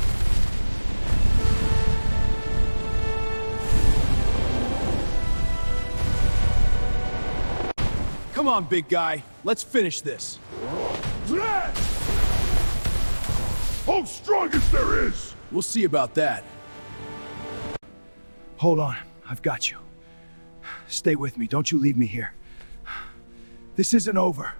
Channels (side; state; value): both; inverted; correlation -1.00